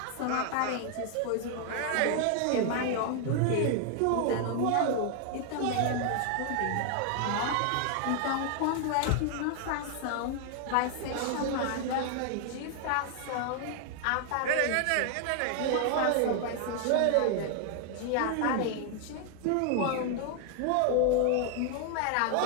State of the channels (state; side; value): different; both; correlation 0.00